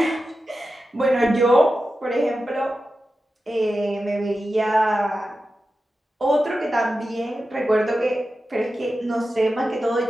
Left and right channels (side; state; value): both; normal; correlation 0.92